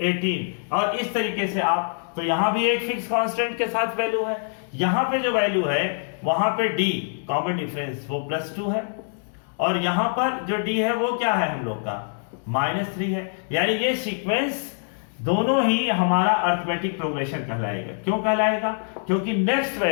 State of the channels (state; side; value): silent; right; digital silence